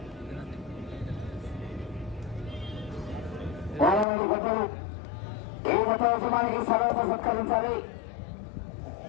ఏ మత యజమానికి సర్వత సత్కరించాలి.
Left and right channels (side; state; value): right; drops out; at 4.0 s